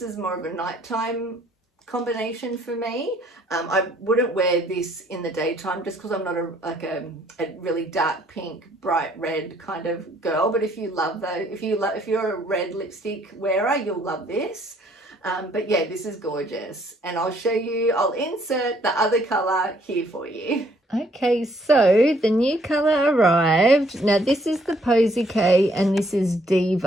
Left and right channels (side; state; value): both; normal; correlation 0.65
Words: more of a nighttime combination for me. I wouldn't wear this in the daytime just because I'm not a really dark pink, bright red kind of girl. But if you love those, if you're a red lipstick wearer, you'll love this. But yeah, this is gorgeous, and I'll show you. I'll insert the other color here for you. Okay, so the new color arrived. Now this is the Posy K and this is